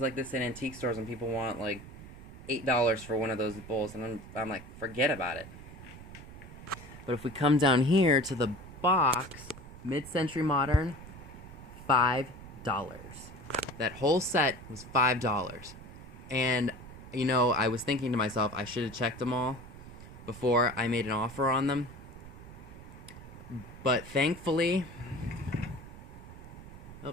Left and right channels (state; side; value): noise; right; rumble, 15 dB below the sound